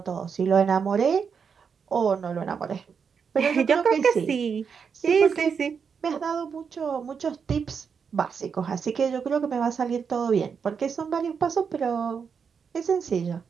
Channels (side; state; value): left; quieter; 6.3 dB